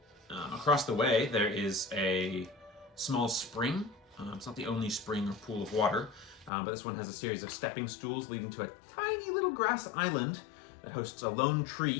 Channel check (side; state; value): right; drops out; at 6.5 s